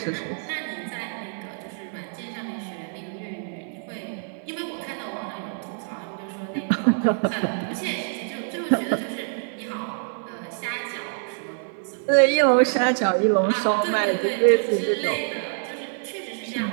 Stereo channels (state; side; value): silent; left; 59 dB below the other